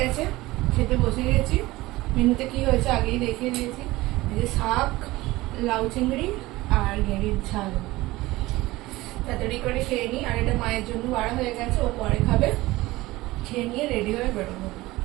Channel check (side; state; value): left; quieter; 19.1 dB